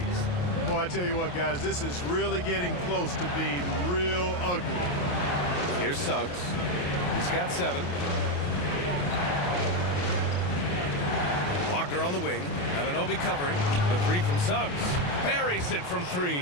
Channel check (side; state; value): right; late; 28 ms